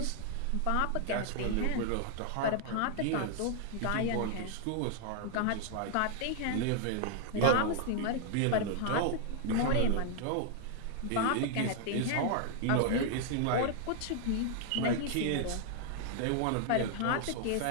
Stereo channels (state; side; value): different; both; correlation 0.00